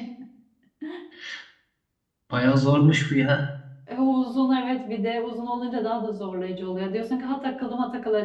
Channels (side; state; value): both; identical; correlation 1.00